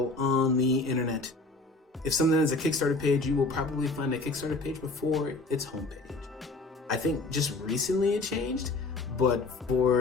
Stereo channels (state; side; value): quieter; right; 3.2 dB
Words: on the internet. If something has a Kickstarter page, you will probably find a Kickstarter page before its homepage. I think just recently it changed, but